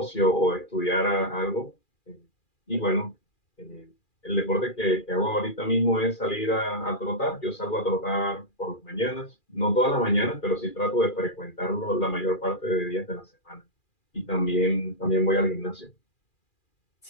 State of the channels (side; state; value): right; late; 2.4 ms